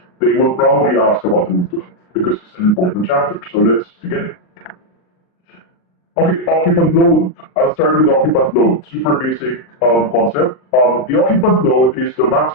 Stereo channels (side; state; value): right; late; 39 ms